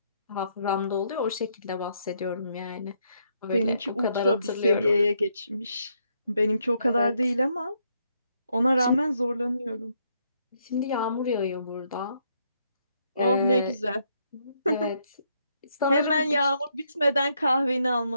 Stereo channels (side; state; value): both; inverted; correlation -0.75